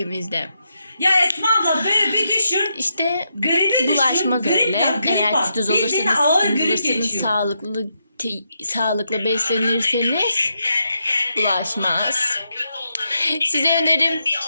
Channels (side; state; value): both; inverted; correlation -0.82